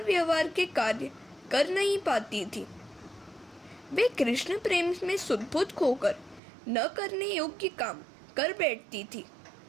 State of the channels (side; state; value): left; drops out; at 6.4 s